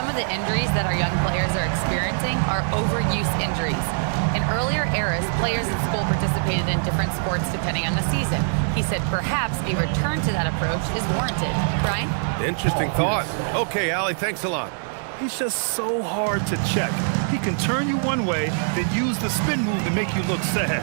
of the injuries that our young players are experiencing are overuse injuries. In earlier eras, players at school participated in different sports depending on the season. He said perhaps a return to that approach is warranted. Brian? Interesting thought. Okay, Allie, thanks a lot. He's just so hard to check. He can turn you one way, then use the spin move to make you look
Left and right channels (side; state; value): left; silent; digital silence